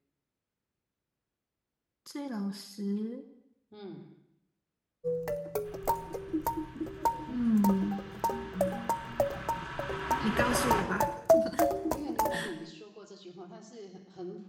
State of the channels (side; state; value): both; identical; correlation 1.00